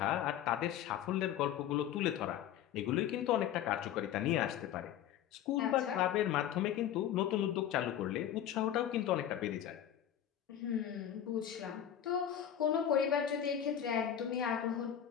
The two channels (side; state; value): right; quieter; 10.4 dB